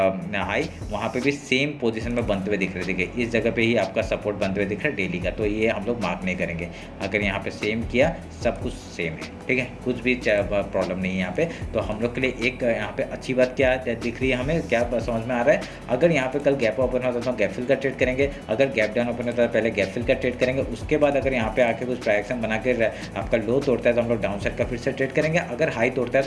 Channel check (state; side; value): identical; both; correlation 1.00